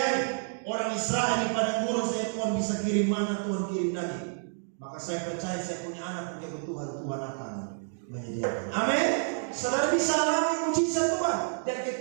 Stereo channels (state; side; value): silent; left; digital silence